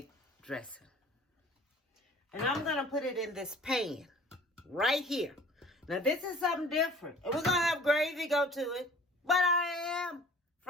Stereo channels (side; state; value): both; normal; correlation 0.48